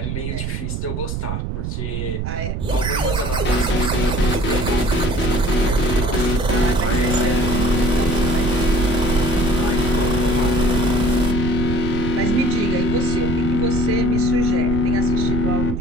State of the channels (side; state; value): right; noise; rumble, 3 dB below the sound